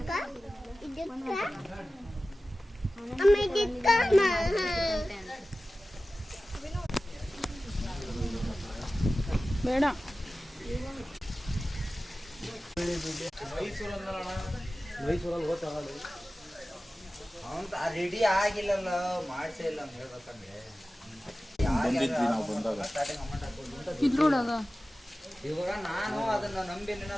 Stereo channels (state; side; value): normal; both; correlation 0.96